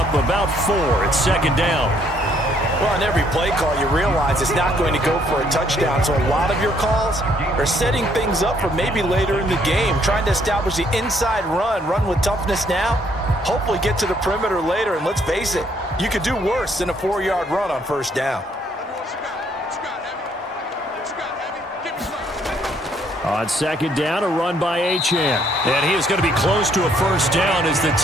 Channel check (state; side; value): normal; both; correlation 0.67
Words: about 4 at 2nd down. Well, on every play call, you realize it's not going to go for a touchdown. So a lot of your calls are setting things up for maybe later in the game, trying to establish the inside run with toughness now, hopefully get to the perimeter later. And let's face it, you could do worse than a 4-yard run on 1st down. On 2nd down, a run by Achane. And he is going to be close to a 1st down as the